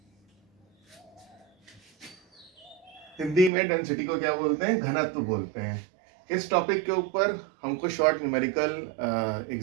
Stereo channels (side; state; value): left; drops out; at 3.5 s